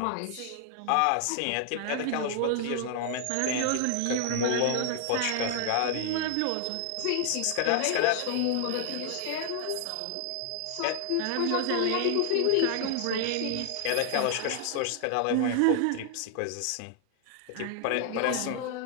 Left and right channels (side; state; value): both; different; correlation 0.00